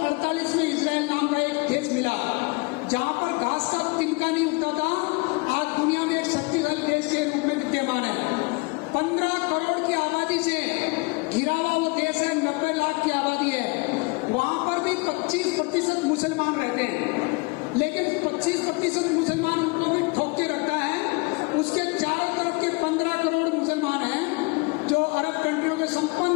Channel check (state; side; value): quieter; right; 28.5 dB